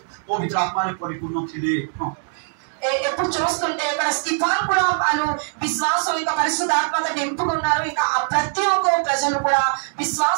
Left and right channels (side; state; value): left; silent; digital silence